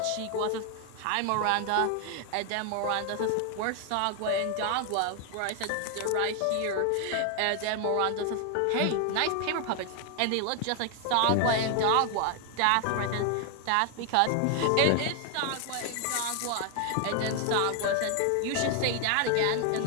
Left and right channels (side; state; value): both; different; correlation 0.00